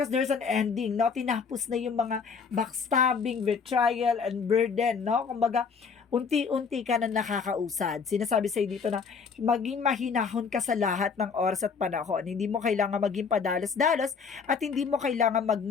there's an ending, no? Tinapos na yung mga backstabbing, betrayal, and burden, no? Kumbaga, unti-unti ka na nakakausad. Sinasabi sa'yo dito na maging mahinahon ka sa lahat ng oras at panahon. Hindi mo kailangan maging padalos-dalos at hindi mo kailangan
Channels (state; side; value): quieter; right; 5.7 dB